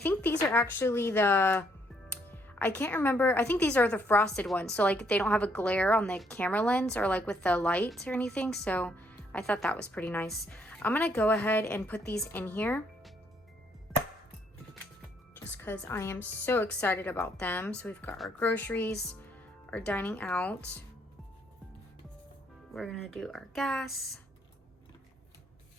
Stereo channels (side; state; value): both; normal; correlation 0.70